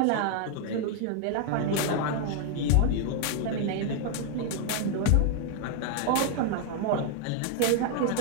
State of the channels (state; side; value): different; both; correlation 0.00